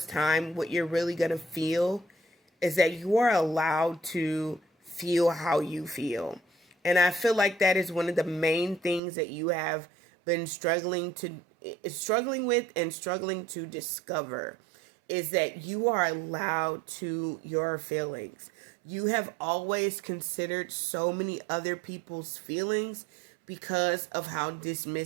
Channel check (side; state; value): left; drops out; at 9.0 s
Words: time, what you're really going to feel is that you are allowed to feel how you feel. And I feel like that is one of the main things that you have been struggling with and struggling to discover, is that you are allowed to your feelings. You have always considered so many other people's feelings because of how